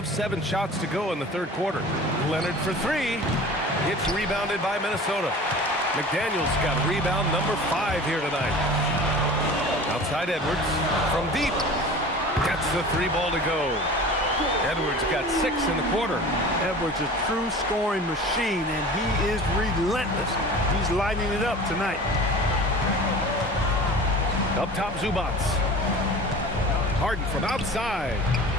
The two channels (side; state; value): both; normal; correlation 0.39